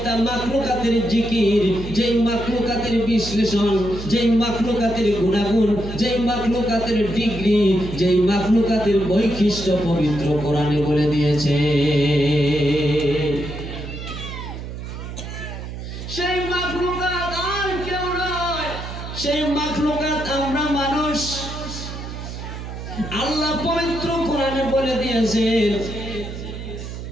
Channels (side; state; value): right; noise; hum, 9 dB below the sound